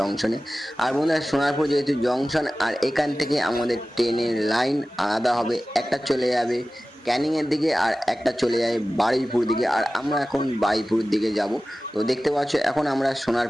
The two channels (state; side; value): normal; both; correlation 0.96